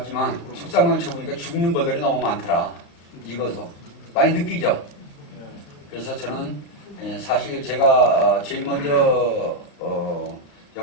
속상관을 쳐보니까 죽는 벌들이 너무 많더라. 익어서. 많이 느끼죠? 그래서 저는, 사실 제가 제일 먼저,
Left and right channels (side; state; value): right; late; 35 ms